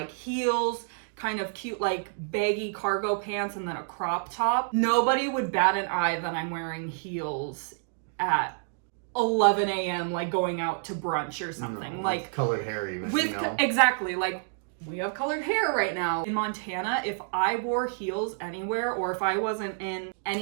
heels, kind of cute like baggy cargo pants, and then a crop top. Nobody would bat an eye that I'm wearing heels at 11 a.m. like going out to brunch or something. No, like with colored hair even, with you know? Exactly, like we have colored hair right now. In Montana, if I wore heels anywhere, or if I wasn't in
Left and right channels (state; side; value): silent; left; digital silence